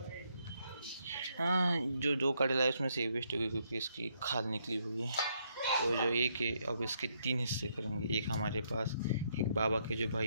हाँ जो दो काटेला है उसमें से वेस्ट हो गई क्योंकि इसकी खाल निकली हुई है. तो जो एक है अब इसके 3 हिस्से करेंगे. एक हमारे पास, एक बाबा के जो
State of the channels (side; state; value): both; inverted; correlation -0.74